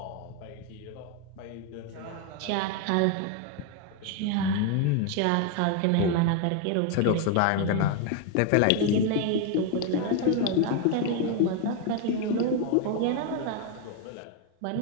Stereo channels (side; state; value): both; different; correlation 0.01